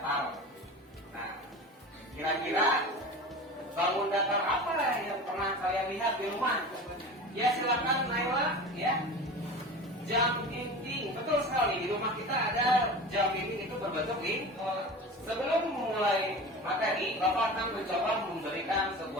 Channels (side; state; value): both; normal; correlation 0.33